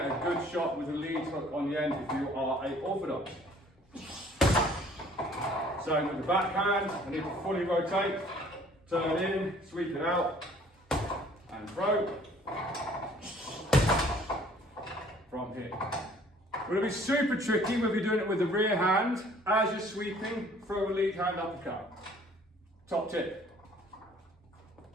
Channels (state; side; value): normal; both; correlation 0.56